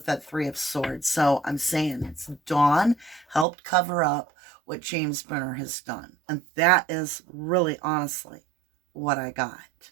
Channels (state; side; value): drops out; left; at 3.5 s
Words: that Three of Swords. So I'm saying it's Dawn helped cover up what James Brenner has done. And that is really, honestly, what I got.